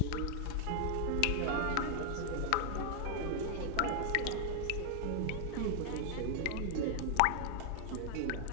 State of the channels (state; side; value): different; both; correlation 0.00